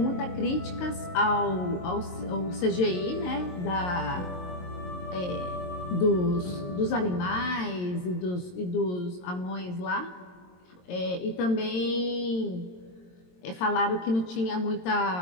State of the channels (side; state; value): right; late; 22 ms